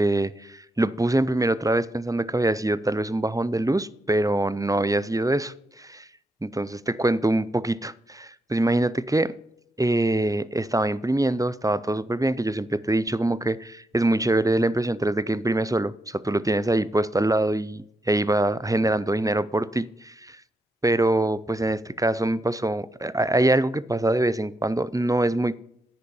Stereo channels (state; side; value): normal; both; correlation 0.81